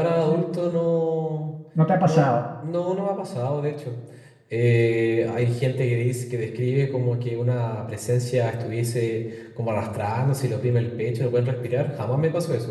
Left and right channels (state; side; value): identical; both; correlation 1.00